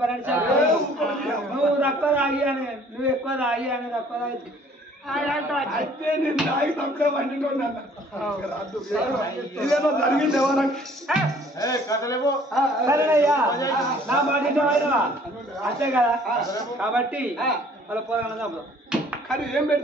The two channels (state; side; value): normal; both; correlation 0.56